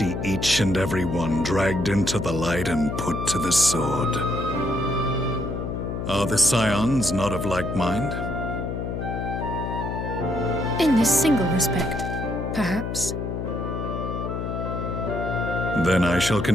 each and every one dragged into the light and put to the sword. Are the Scions not of like mind? In this single respect, perhaps. Then I shall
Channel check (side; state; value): left; noise; hum, 4 dB below the sound